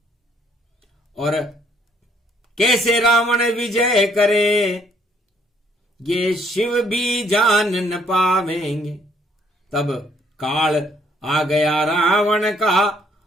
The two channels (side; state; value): both; normal; correlation 0.65